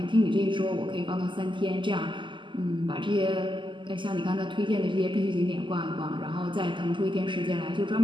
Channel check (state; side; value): late; left; 0.24 ms